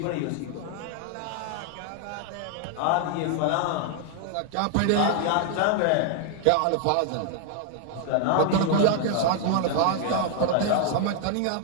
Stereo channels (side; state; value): both; different; correlation 0.00